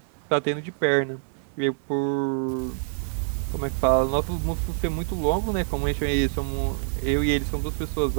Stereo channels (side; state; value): left; silent; digital silence